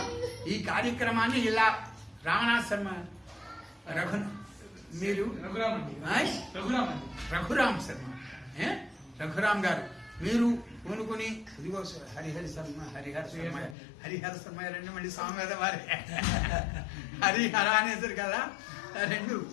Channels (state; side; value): drops out; right; at 13.8 s